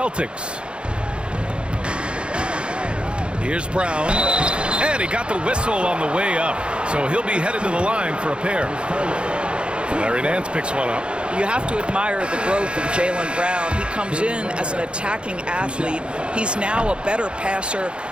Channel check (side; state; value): left; late; 0.056 ms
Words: Here's Brown. And he got the whistle on the way up. So he'll be headed to the line for a pair. Larry Nance picks one up. You have to admire the growth of Jaylen Brown. He comes in as an attacking athlete. He's now a better passer,